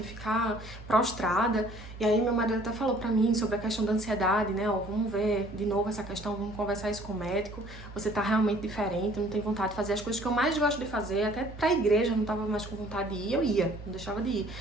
ficar prostrada. E aí meu marido até falou pra mim sobre a questão da ansiedade, né? Ó, vamos ver de novo essa questão, vamos conversar isso com o médico. Você tá realmente diferente, não tem vontade de fazer as coisas que eu mais gosto de fazer. Até pra igreja eu não tava mais com vontade de ir, eu ia, não deixava de ir.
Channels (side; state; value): both; normal; correlation 0.55